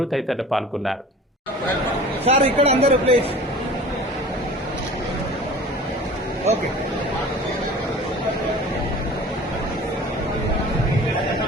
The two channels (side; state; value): both; normal; correlation 0.42